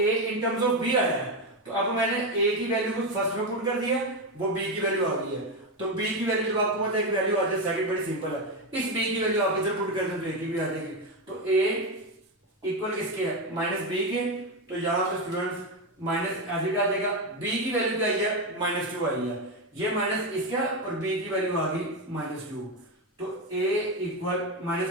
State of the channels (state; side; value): normal; both; correlation 0.11